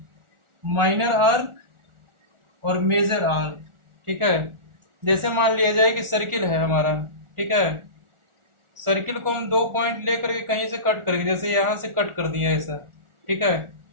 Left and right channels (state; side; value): late; left; 1.4 ms